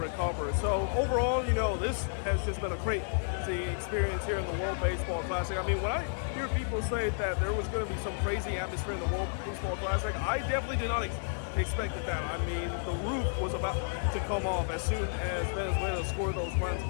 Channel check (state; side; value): silent; right; digital silence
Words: So overall, you know, this has just been a crazy experience here in the World Baseball Classic. I mean, when I hear people say that there was going to be some crazy atmosphere in the World Baseball Classic, I definitely did not expected that. I mean, the roof was about to come off as soon as Venezuela scored those runs